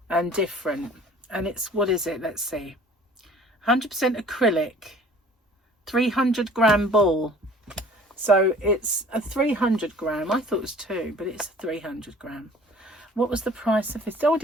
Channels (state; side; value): normal; both; correlation 0.50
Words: and different. And it's, what is it? Let's see. 100% acrylic, 300 gram ball. So it's a 300 gram. I thought it was 2, but it's a 300 gram. What was the price of this? Oh, I